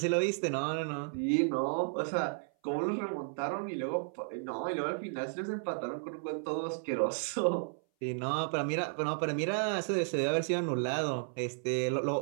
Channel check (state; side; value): silent; left; 56 dB below the other